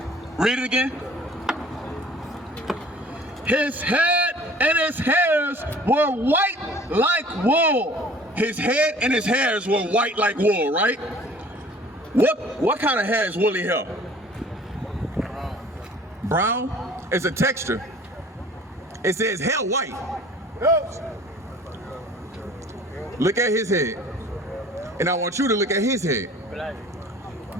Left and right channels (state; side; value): normal; both; correlation 0.50